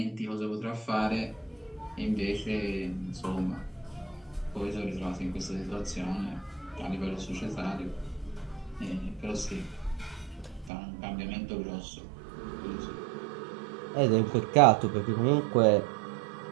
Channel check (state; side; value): drops out; left; at 10.7 s